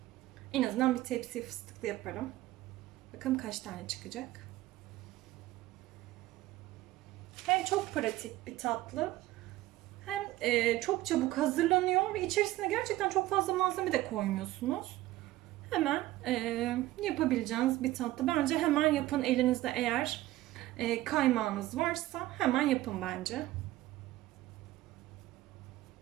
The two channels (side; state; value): left; quieter; 16.4 dB